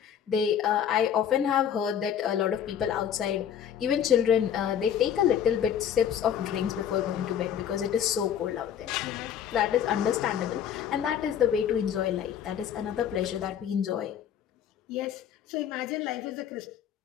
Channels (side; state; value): right; quieter; 9.0 dB